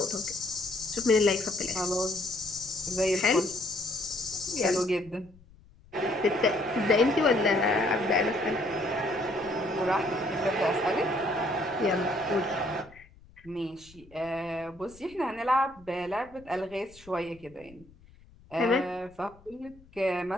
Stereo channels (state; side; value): noise; left; rumble, 25 dB below the sound